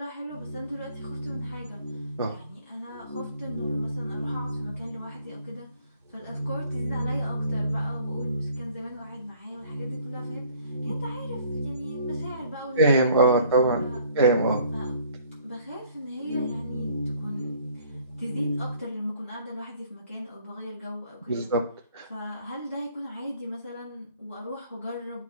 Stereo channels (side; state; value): both; inverted; correlation -0.59